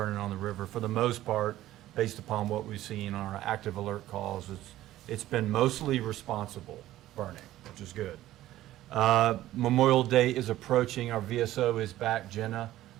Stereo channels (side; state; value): left; quieter; 14.6 dB